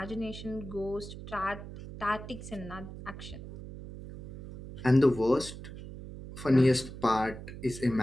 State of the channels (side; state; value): right; noise; hum, 12 dB below the sound